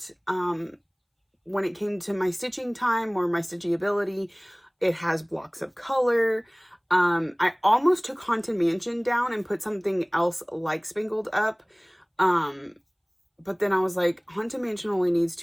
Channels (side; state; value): both; identical; correlation 1.00